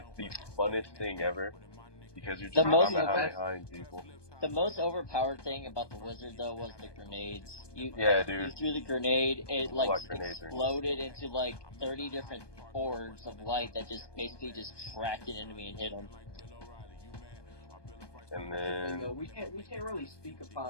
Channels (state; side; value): late; right; 1.2 ms